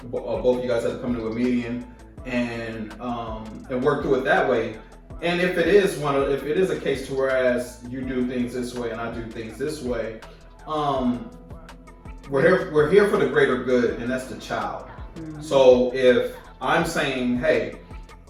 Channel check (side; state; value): both; identical; correlation 1.00